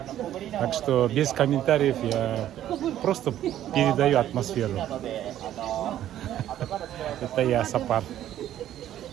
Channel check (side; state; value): left; quieter; 12.0 dB